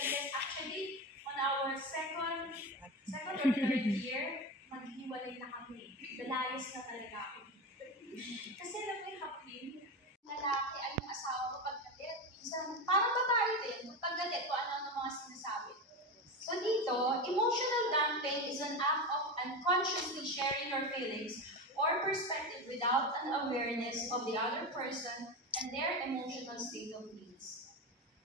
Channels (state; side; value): normal; both; correlation 0.20